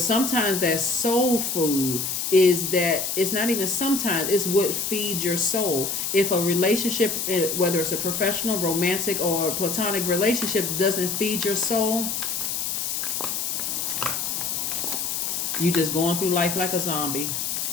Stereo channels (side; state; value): left; noise; hiss, 2 dB below the sound